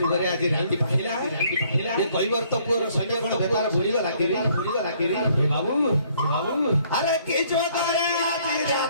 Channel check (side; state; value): both; inverted; correlation -0.64